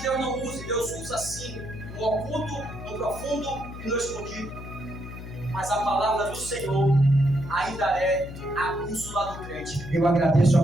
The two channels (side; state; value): left; noise; hum, 11 dB below the sound